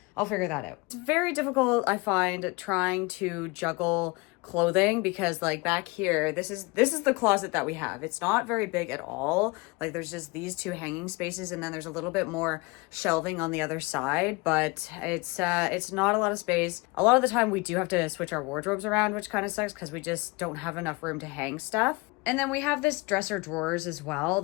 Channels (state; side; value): quieter; right; 25.8 dB